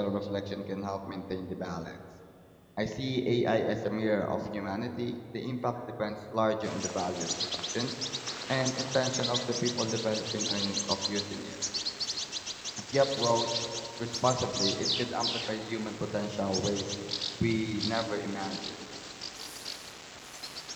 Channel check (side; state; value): both; identical; correlation 1.00